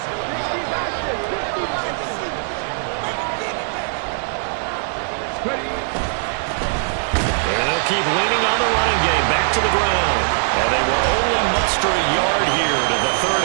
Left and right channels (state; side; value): silent; left; 65 dB below the other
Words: And they'll keep leaning on the running game back to the ground. And they will only muster a yard here to the